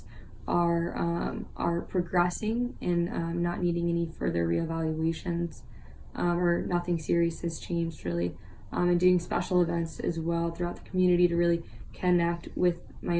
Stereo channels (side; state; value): both; identical; correlation 1.00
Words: are progressing and not needing any further reevaluations, or nothing serious has changed really, and doing special events as well throughout the community to really connect with